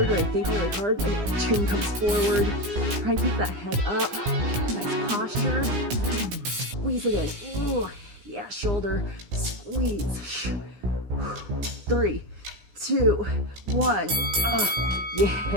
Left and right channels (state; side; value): late; left; 17 ms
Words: or I think really hard, my chin comes forward. Try and keep that head up. Nice posture. Squeeze it in. Ooh, yeah, shoulder. Squeeze. 3, 2, 1.